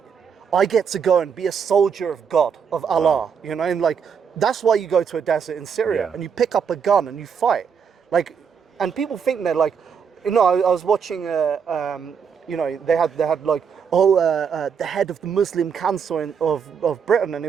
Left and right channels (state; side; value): quieter; left; 6.8 dB